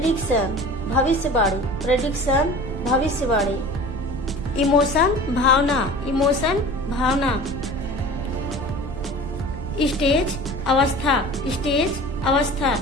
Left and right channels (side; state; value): right; noise; rumble, 8 dB below the sound